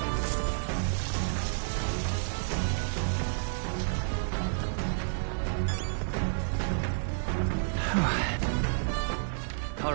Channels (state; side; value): silent; left; digital silence